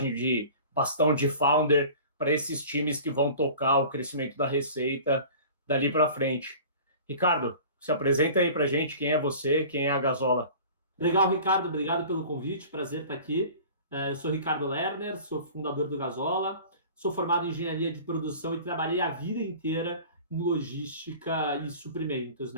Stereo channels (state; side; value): inverted; both; correlation -0.42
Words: de bastão de founder para esses times que vão tocar o crescimento da receita dali para frente. Ricardo, se apresenta aí para a gente, quem é você, quem é a Gazola. Legal, Ricardo, obrigado pelo convite, prazer estar aqui. Eu sou Ricardo Lerner, sou fundador do Gazola, sou formado em engenharia de produção e trabalhei a vida inteira em logística e suprimentos,